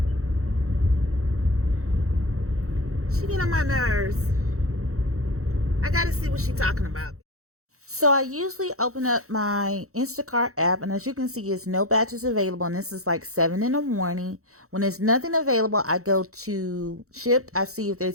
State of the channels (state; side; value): late; left; 0.64 ms